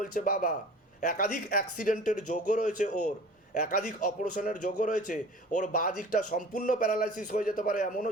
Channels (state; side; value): normal; both; correlation 0.43